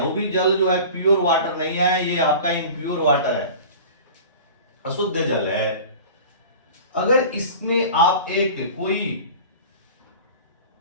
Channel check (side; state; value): both; inverted; correlation -0.38